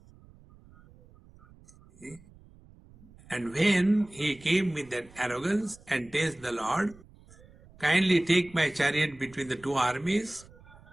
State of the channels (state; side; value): noise; right; rumble, 25 dB below the sound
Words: See? And when he came with that arrogance and tells the Lord, kindly take my chariot between the 2 armies,